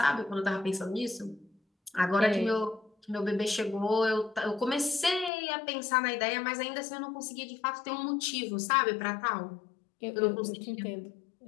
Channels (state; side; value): drops out; right; at 5.3 s